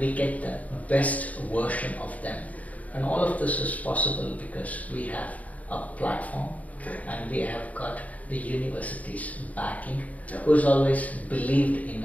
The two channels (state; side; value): late; right; 0.071 ms